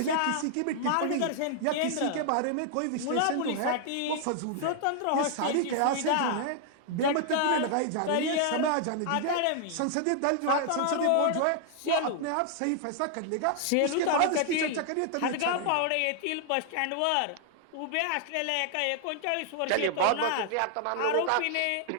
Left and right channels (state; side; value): different; both; correlation 0.00